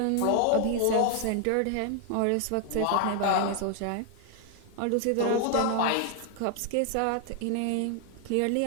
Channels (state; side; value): different; both; correlation 0.00